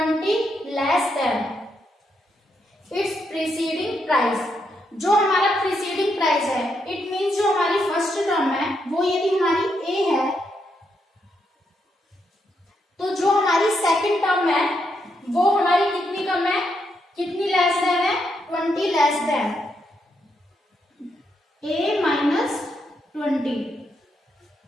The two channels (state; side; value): normal; both; correlation 0.79